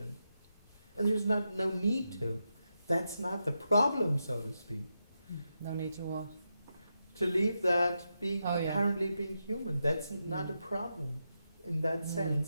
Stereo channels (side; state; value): both; inverted; correlation -0.86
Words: there's no need to. That's not the problem, so to speak. No need to what? To leave that being Oh, yeah. apparently being human. That's not a problem in that